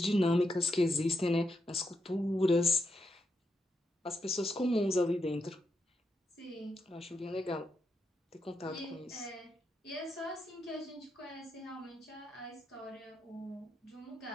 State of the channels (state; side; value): normal; both; correlation 0.83